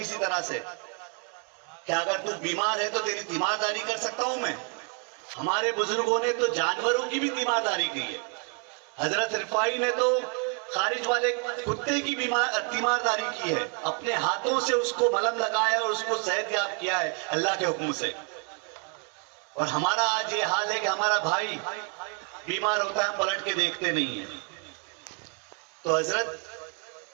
طرح سے، کیا اگر تو بیمار ہے تو تیری تیمارداری کر سکتا ہوں میں۔ ہمارے بزرگوں نے تو جانوروں کی بھی تیمارداری کی ہے، حضرت رفاعی نے تو خارج والے کتے کی تیمارداری کی ہے، اپنے ہاتھوں سے اس کو ملہم لگایا اور اس کو صحت یاب کیا ہے اللہ کے حکم سے۔ اور ہمارا آج یہ حال ہے کہ ہمارا بھائی بیمار ہوتا ہے ہم پلٹ کے دیکھتے نہیں ہیں۔ تو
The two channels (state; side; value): quieter; left; 37.3 dB